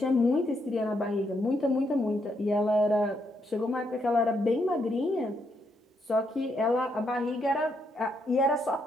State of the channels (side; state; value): both; normal; correlation 0.77